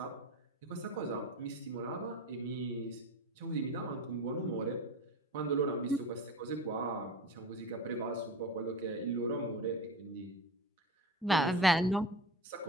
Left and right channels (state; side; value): normal; both; correlation 0.31